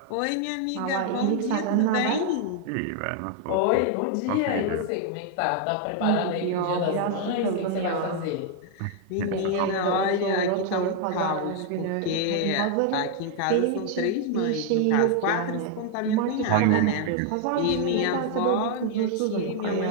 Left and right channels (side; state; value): both; different; correlation 0.00